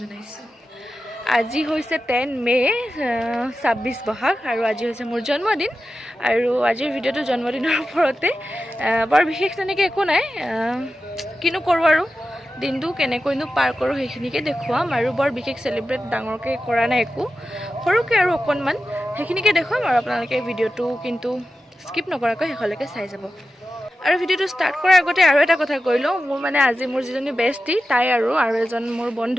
জনাইছো। আজি হৈছে 10 মে 26 বহাগ আৰু আজি হৈছে মোৰ জন্মদিন আৰু আজিৰ ভিডিঅ'টো জন্মদিনৰ ওপৰতে বৰ বিশেষ তেনেকৈ একো নাই কিনো কৰো আৰু দিনটো কেনেকৈনো পাৰ কৰো সেইখিনিকে দেখুৱাম আৰু বৰ বিশেষ সেলিব্ৰেট ডাঙৰকৈ কৰা নাই একো সৰুকে আৰু অকণমান সেইখিনিকে দেখুৱাম আৰু আপোনালোকে ভিডিঅ'টো কিন্তু স্কিপ নকৰাকৈ শেষলৈকে চাই যাব আৰু ভিডিঅ'টো ষ্টাৰ্ট কৰাৰ আগতে আৰু এটা কথা কৈ লওঁ মোৰ মানে আজি মোৰ যিজনী বেষ্টি তাই আৰু এজন মোৰ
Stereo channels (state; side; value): normal; both; correlation 0.92